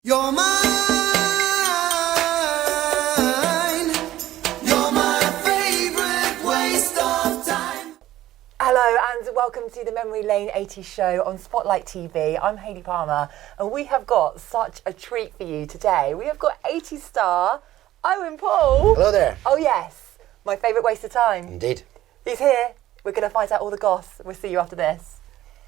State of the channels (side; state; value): left; quieter; 14.3 dB